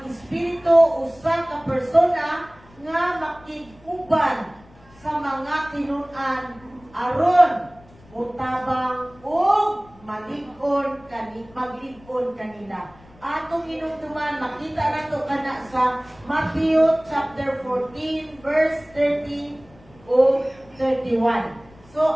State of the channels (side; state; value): left; noise; rumble, 26 dB below the sound